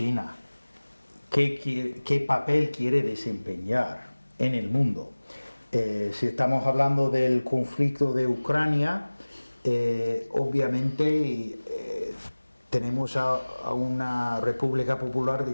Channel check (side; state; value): both; inverted; correlation -1.00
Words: ¿Qué papel quiere desempeñar en el mundo? Si estamos hablando del conflicto de Ucrania, obviamente tenemos a una República Popular